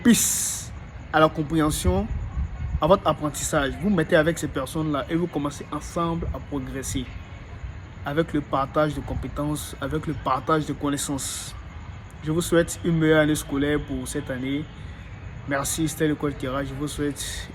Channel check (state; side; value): identical; both; correlation 1.00